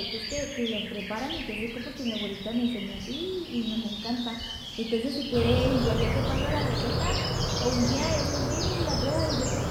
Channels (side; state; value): both; identical; correlation 1.00